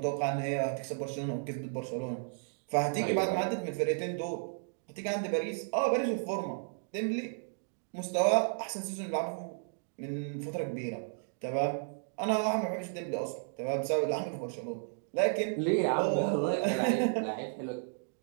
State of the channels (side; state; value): left; silent; digital silence